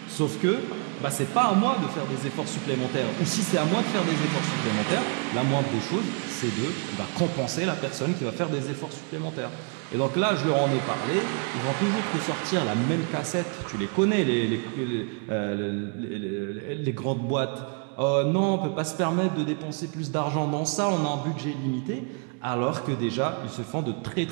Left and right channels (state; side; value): quieter; left; 38.0 dB